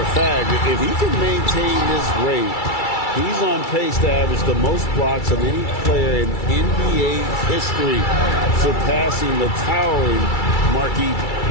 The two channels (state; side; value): late; right; 2.3 ms